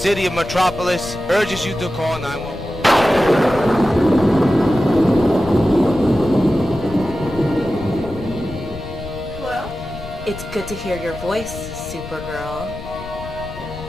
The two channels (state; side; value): noise; left; rumble, 12 dB below the sound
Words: of Metropolis urges you to call 911. It's good to hear your voice, Supergirl.